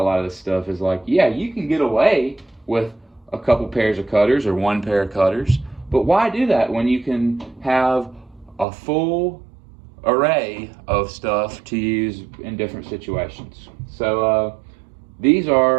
lot of this stuff is like, yeah, you can get away with a couple pairs of cutters or one pair of cutters, but why do that when you can have a full array of stuff to use in different situations? So these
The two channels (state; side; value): drops out; left; at 8.7 s